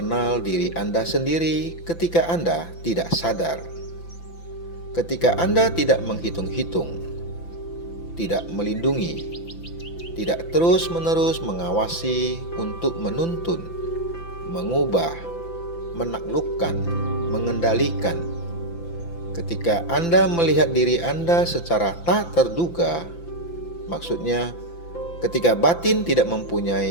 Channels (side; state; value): right; late; 5.9 ms